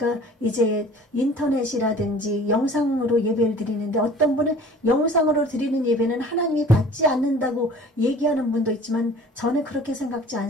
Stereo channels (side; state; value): both; normal; correlation 0.47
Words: 이제 인터넷이라든지 영상으로 예배를 드리는데, 어떤 분은 영상으로 드리는 예배는 하나님이 받지 않는다고 얘기하는 분도 있지만 저는 그렇게 생각지